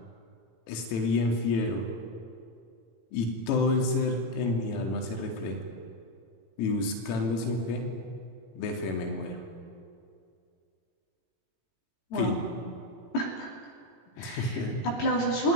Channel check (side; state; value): right; late; 18 ms